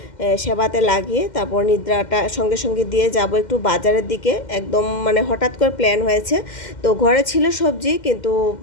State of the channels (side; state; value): right; late; 2.1 ms